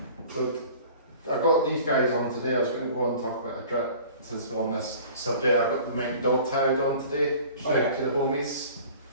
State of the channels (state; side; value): inverted; both; correlation -0.45